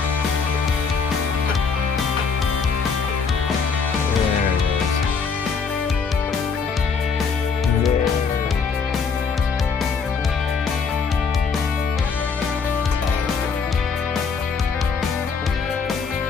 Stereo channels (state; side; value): quieter; right; 5.5 dB